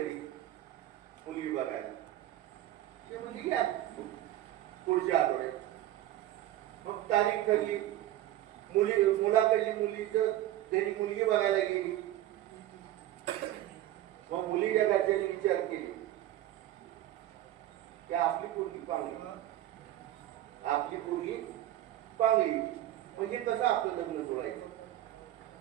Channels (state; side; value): quieter; left; 13.9 dB